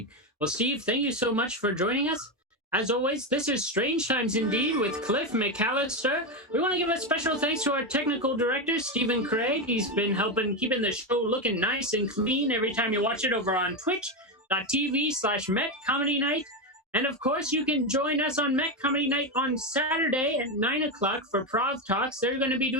Well, Steve, thank you so much for joining us. As always, this is Strange Times Indeed with Cliff McCallister. We want to give a special thanks to our technical director, Stephen Craig. He's been helping keeping the show looking nice and clean every time you watch it over on twitch.tv/Met Comedy Night. And of course, you can join us on Met Comedy Night on Saturday at 9 o'clock for Prov Talks. They're going to be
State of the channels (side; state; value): both; normal; correlation 0.11